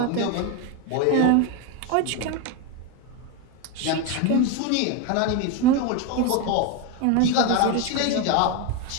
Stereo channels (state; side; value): different; both; correlation 0.02